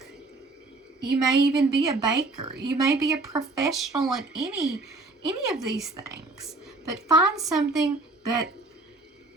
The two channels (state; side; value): quieter; left; 3.2 dB